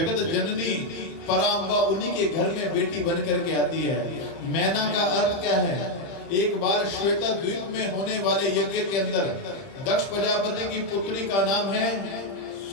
जननी परांबा उन्हीं के घर में बेटी बन करके आती है। मैना का अर्थ क्या है? एक बार श्वेता द्वीप में होने वाले यज्ञ के अंदर दक्ष प्रजापति की पुत्री का नाम है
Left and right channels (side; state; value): right; late; 30 ms